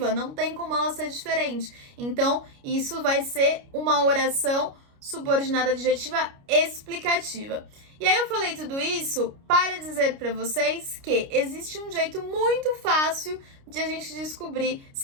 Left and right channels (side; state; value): left; late; 29 ms